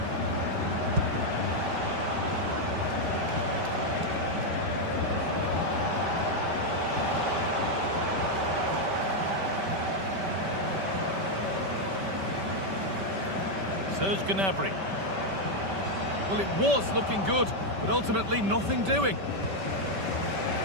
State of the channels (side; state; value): left; late; 5.2 ms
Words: Serge Gnabry. Well, it was looking good, but ultimately nothing doing.